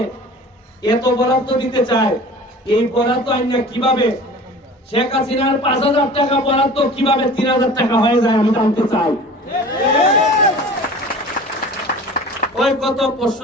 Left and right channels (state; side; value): normal; both; correlation 0.41